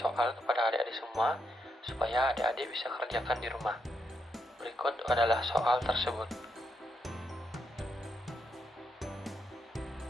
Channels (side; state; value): both; normal; correlation 0.80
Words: kepada adik-adik semua supaya adik-adik bisa kerjakan di rumah. Berikut adalah soal tersebut.